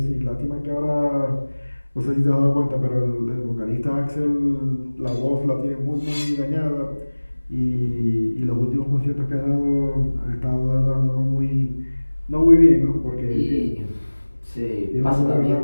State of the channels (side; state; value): both; inverted; correlation -1.00